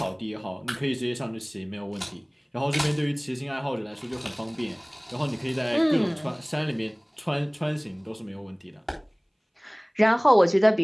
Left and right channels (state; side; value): identical; both; correlation 1.00